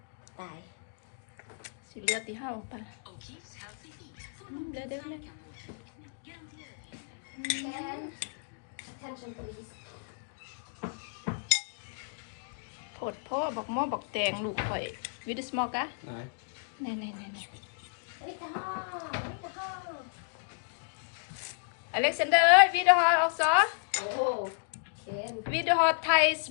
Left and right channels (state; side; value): silent; right; digital silence